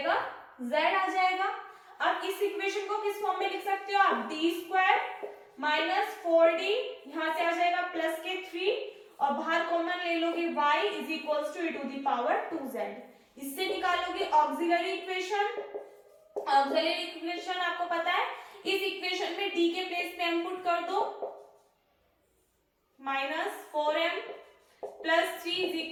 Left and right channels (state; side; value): identical; both; correlation 1.00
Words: z आ जाएगा। अब इस इक्वेशन को किस फॉर्म में लिख सकते हो आप, डी स्क्वायर माइनस 4d, यहां से आ जाएगा प्लस के 3 और बाहर कॉमन ले लोगे y is equals to e to the power 2z। इससे निकालोगे ऑक्सिलरी इक्वेशन। ऑक्सिलरी इक्वेशन आपको पता है, इस इक्वेशन में d के प्लेस पे m पुट कर दो, minus 4m plus 3 is